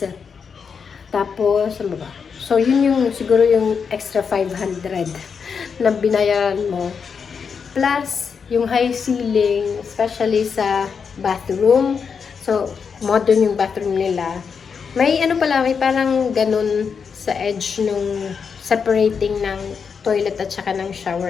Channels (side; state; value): right; quieter; 6.1 dB